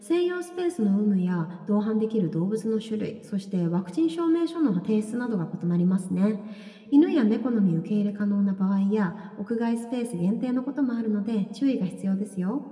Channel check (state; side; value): identical; both; correlation 1.00